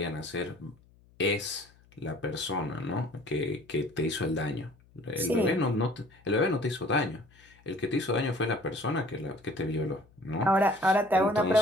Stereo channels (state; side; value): noise; left; hum, 29 dB below the sound